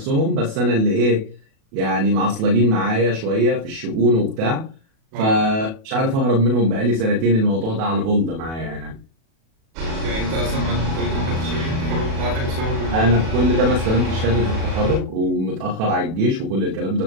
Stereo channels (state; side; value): late; left; 37 ms